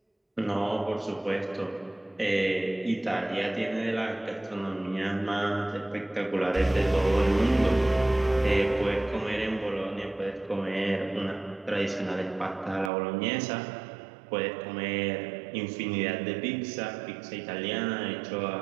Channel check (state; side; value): drops out; left; at 12.9 s